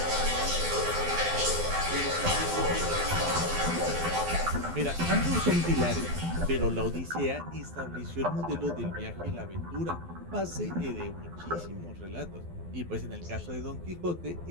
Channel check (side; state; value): left; late; 12 ms